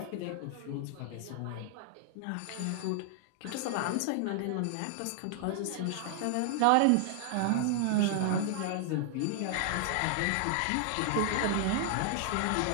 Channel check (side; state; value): both; different; correlation -0.01